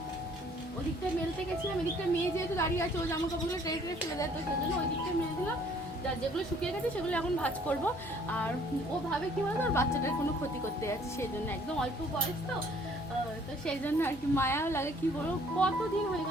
ওদিকটায় মেলতে গেছিলাম, এদিকটায় মেয়ে যেহেতু দাঁড়িয়ে আছে, ও জামা কাপড়গুলো ট্রে ট্রে ফেলে দেয়, তো সেই জন্য ওই দিকটায় মেলে দিলাম। যার যেগুলো শুকিয়ে গেছে সেগুলো এখন ভাঁজ করবো। আর ও ভাবে কি বলতো, আর বাচ্চাটার কোনো ক্ষতি করতে যাচ্ছে, সেই জন্য একদম অল্প বয়স তো, তো সেই জন্য আর কি মায়াও লাগে। কি বলবো, কতদিন হয়ে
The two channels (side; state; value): both; normal; correlation 0.59